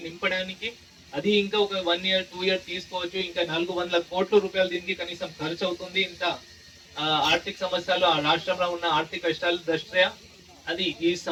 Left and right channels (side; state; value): both; identical; correlation 1.00